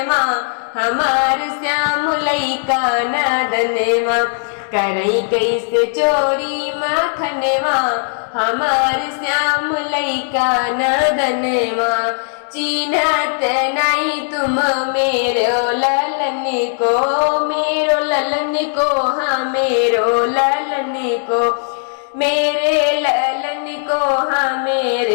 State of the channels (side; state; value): right; silent; digital silence